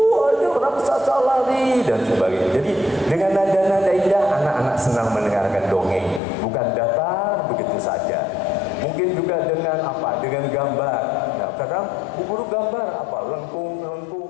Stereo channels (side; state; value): right; drops out; at 6.2 s